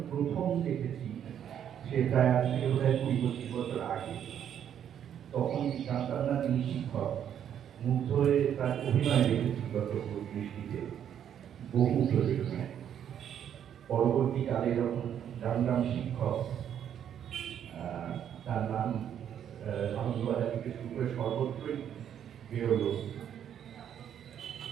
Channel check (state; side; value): quieter; left; 9.4 dB